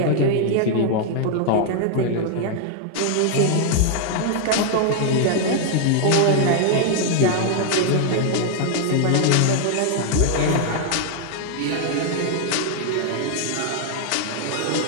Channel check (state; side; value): different; both; correlation 0.00